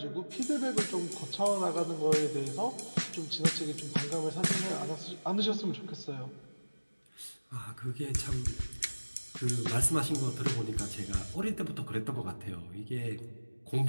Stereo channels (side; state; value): both; inverted; correlation -1.00